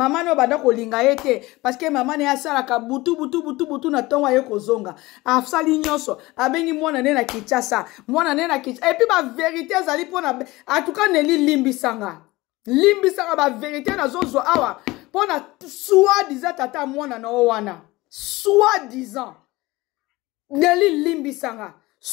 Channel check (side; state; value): right; quieter; 20.4 dB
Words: no banda kolinga ye te parce que mama na ye asalaka butu na ntongo aye kozonga asali nyonso abengi mwana ne na Kinshasa mwana ne na Kinshasa epuis ba vérité ezali mpona en tout cas Nelly limbisanga limbisanga ba vérité na zozo awa pona soi-disant tata mwana na wana soi-disant Nelly limbisanga